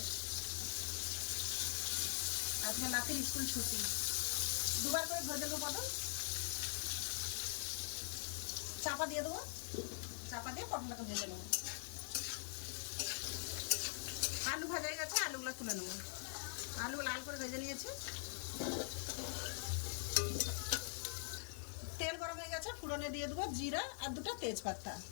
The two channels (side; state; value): right; silent; digital silence